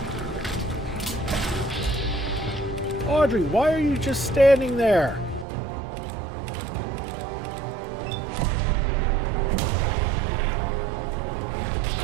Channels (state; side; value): drops out; left; at 5.5 s